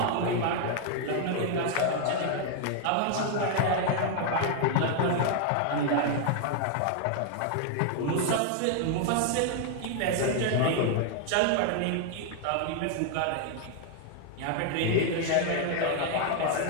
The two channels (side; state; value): both; different; correlation 0.00